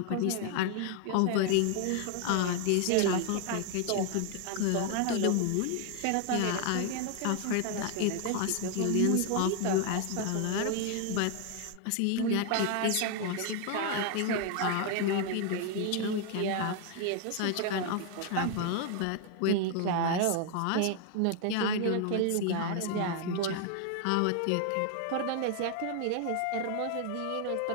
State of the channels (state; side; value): different; both; correlation 0.00